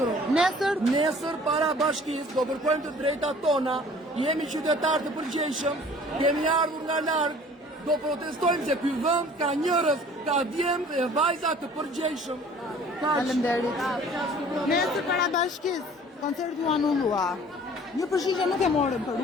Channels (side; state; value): both; normal; correlation 0.50